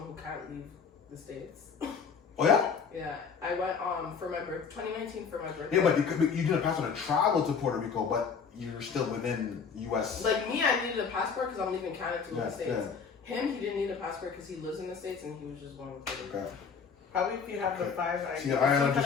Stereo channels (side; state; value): right; quieter; 5.9 dB